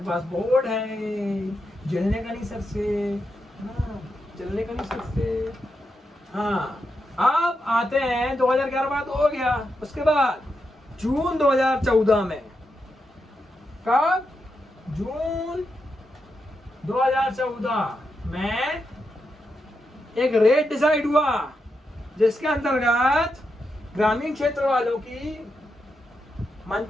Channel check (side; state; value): both; normal; correlation 0.85